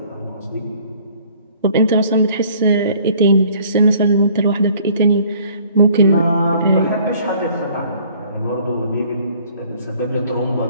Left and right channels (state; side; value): inverted; both; correlation -0.56